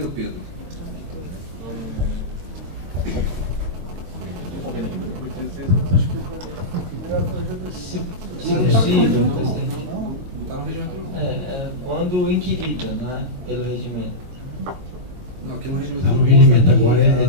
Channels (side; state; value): left; late; 22 ms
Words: Pedro. Não está no regimento não. Quando inquirida, né, pelo regimento. Não, aqui no regimento Não, não. no regimento agora é